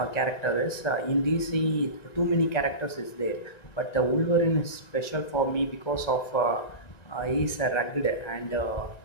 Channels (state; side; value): late; right; 1.9 ms